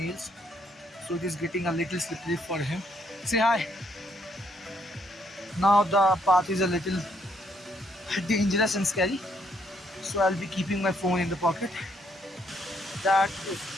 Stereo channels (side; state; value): both; normal; correlation 0.71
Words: nails, so it is getting a little slippery for him. Say hi. Now the path is a little dangerous and scary, so I'll be keeping my phone in the pocket. That is